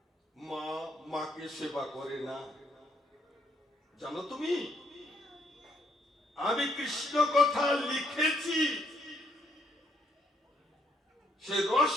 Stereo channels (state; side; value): normal; both; correlation 0.72